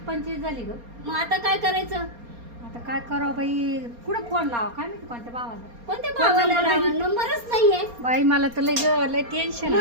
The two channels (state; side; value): late; left; 4.3 ms